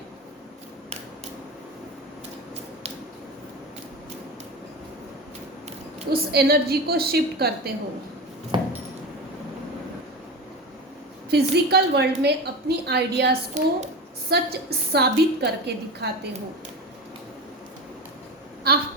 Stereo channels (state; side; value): normal; both; correlation 0.26